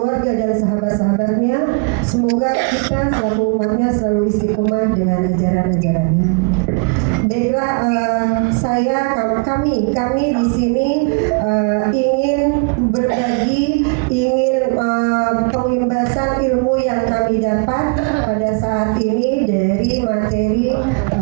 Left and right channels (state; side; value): quieter; left; 32.8 dB